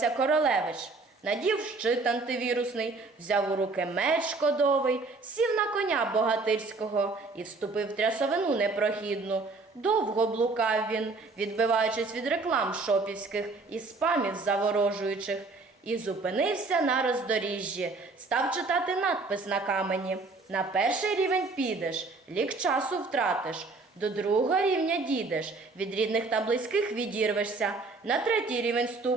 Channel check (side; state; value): left; quieter; 3.7 dB